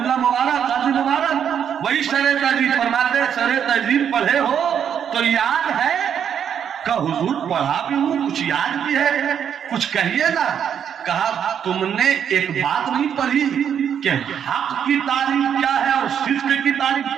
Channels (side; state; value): left; quieter; 8.4 dB